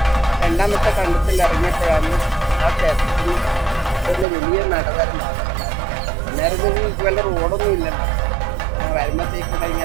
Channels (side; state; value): left; drops out; at 4.2 s